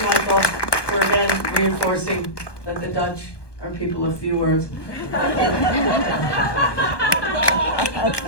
Michael, for again reinforcing that the Dutch are people of few words.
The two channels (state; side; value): late; right; 1.2 ms